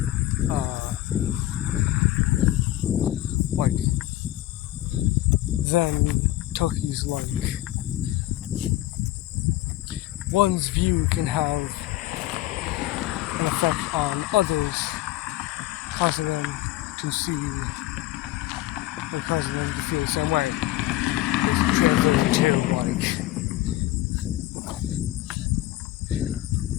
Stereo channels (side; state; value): right; quieter; 15.4 dB